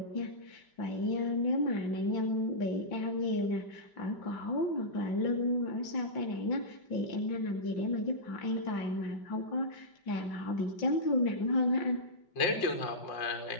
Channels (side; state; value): right; late; 5.1 ms